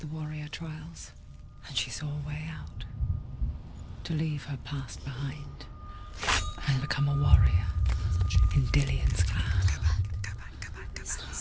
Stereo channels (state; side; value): identical; both; correlation 1.00